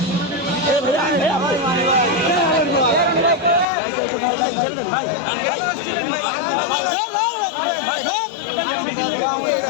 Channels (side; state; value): right; drops out; at 3.7 s